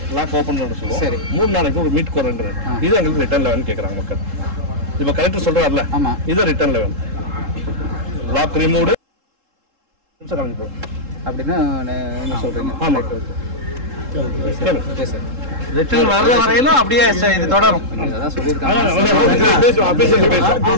லாக் ஓபன் பண்ண சொல்லுவோம். 3 நாளைக்கு ஒரு மீட் குறைன்றது இது எங்களுக்கு ரிட்டர்ன்ல வேணும் கேக்குறாங்க மக்கள். இப்ப கலெக்டர் சொல்றாருல, இது ரிட்டர்ன்ல வேணும். லாக் ரிமூவ்டு அப்படின்னா என்ன சொல்றீங்க? ஆமா, ரிட்டர்ன் வர்ற வரையிலும் அப்படியே இது தொடரும். அதான் சொல்லியிருக்காங்க.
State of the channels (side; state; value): left; late; 3.7 ms